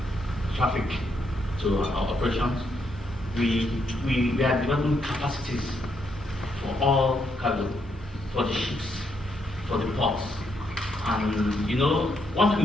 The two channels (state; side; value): normal; both; correlation 0.77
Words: traffic to our operations, we are developing capacities for all cargo, for the ships, for the ports. And you know, one